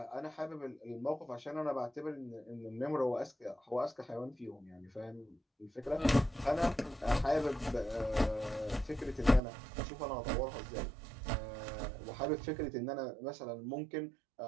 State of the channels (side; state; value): left; drops out; at 9.4 s